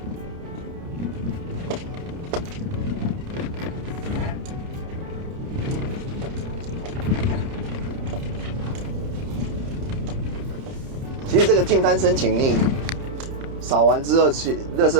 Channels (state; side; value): late; left; 30 ms